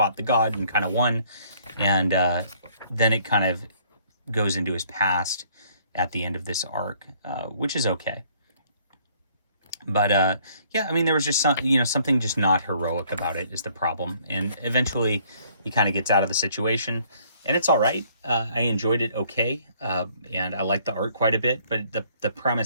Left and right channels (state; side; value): inverted; both; correlation -0.62